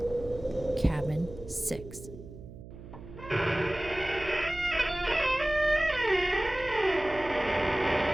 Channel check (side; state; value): right; noise; hum, 15 dB below the sound